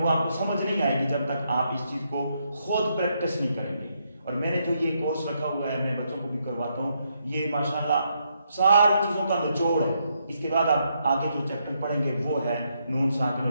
وہ آپ کو سمجھ نہیں آئے گی جب تک آپ اس چیز کو خود پریکٹس نہیں کریں گے. اور میں نے جو یہ کورس رکھا ہوا ہے، میں بچوں کو بھی کرواتا ہوں، یہ ماشاءاللہ ساری چیزوں کا نچوڑ ہے. اس کے بعد آپ آگے جو چیپٹر پڑھیں گے وہ ہے نون ساکن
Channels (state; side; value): inverted; both; correlation -0.78